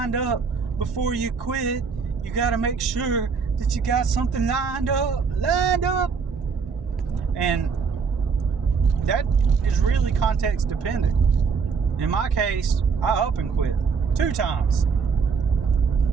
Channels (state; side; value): quieter; left; 5.6 dB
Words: up before you quit. You got to make sure that you got something lined up. And that is really context dependent. In my case, I up and quit 2 times.